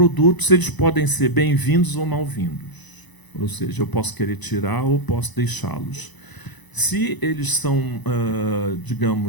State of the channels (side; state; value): right; late; 1.0 ms